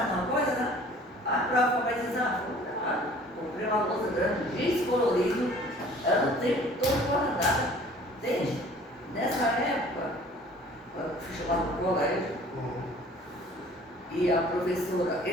numa coisa, né? A prova vai dizer, comprei uma louça grande, descolorido, ela o tempo todo guardada. Entende? Nessa época, eu fui chamada para o colégio, e a professora,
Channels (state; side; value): normal; both; correlation 0.50